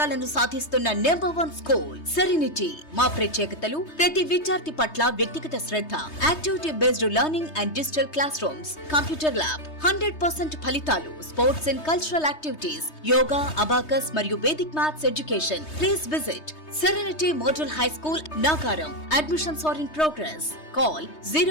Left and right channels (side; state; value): right; late; 3.2 ms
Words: సాధిస్తున్న నంబర్ 1 స్కూల్ సెరెనిటీ. మా ప్రత్యేకతలు ప్రతి విద్యార్థి పట్ల వ్యక్తిగత శ్రద్ధ, activity based learning and digital classrooms, computer lab, 100% ఫలితాలు, sports and cultural activities, yoga, abacus మరియు Vedic maths education. Please visit Serenity Model High School, Nagaram. Admissions are in progress. Call